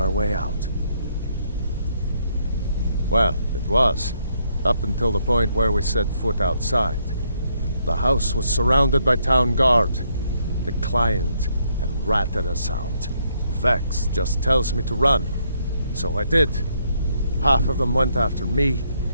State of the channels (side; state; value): both; inverted; correlation -0.74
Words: way out. Well, it was, up until the point where we set foot outside. The house was surrounded by town guard. The client had ratted us out. Vex just tells me to run, so I did. Half of them went after me,